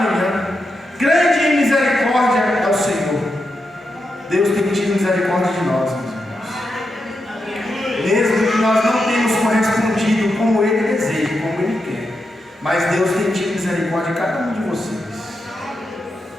Grande em misericórdia é o Senhor. Deus tem tido misericórdia de nós, meus irmãos. Mesmo que nós não tenhamos correspondido como Ele deseja, como Ele quer, mas Deus tem tido misericórdia de cada um de vocês.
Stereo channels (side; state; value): both; normal; correlation 0.86